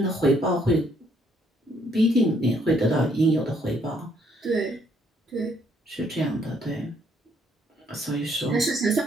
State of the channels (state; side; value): normal; both; correlation 0.68